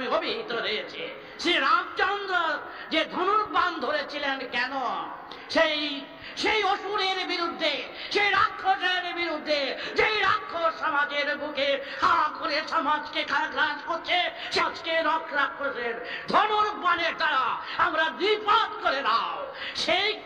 অভিহিত রয়েছে। শ্রী রামচন্দ্র যে ধনুর্বাণ ধরেছিলেন কেন? সেই অসুরের বিরুদ্ধে, সেই রাক্ষসের বিরুদ্ধে, যেই রাক্ষস সমাজের বুকে হা করে সমাজকে গ্রাস করছে, সমাজকে রাক্ষসের ধনুর্বাণের দ্বারা আমরা দ্বিপাত করে দাও, সেই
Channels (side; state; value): both; identical; correlation 1.00